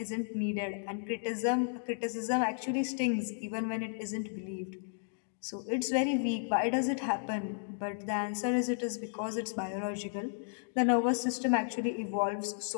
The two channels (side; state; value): right; silent; digital silence